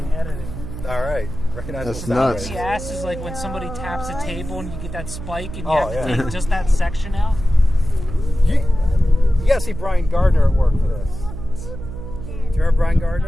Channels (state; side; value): noise; right; hum, 9 dB below the sound